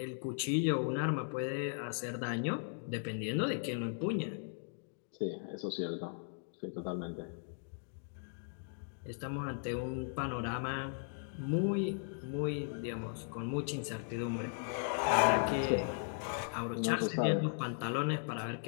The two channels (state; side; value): silent; right; digital silence